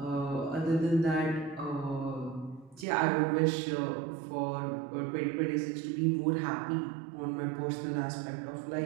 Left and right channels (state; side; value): drops out; left; at 2.9 s